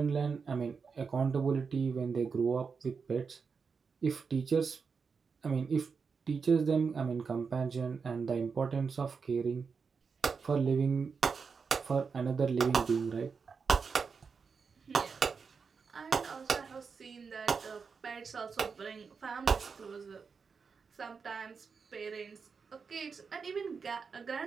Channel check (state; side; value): quieter; left; 5.4 dB